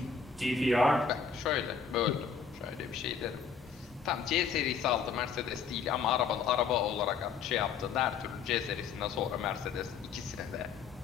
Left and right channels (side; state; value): right; quieter; 6.1 dB